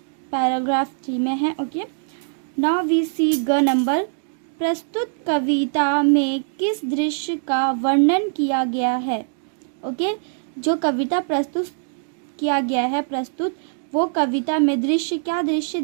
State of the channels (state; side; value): silent; left; digital silence